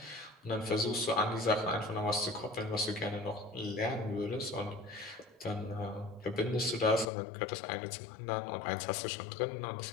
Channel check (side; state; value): right; drops out; at 7.1 s